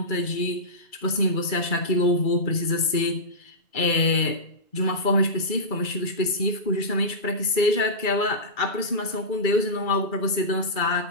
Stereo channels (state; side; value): late; right; 2.3 ms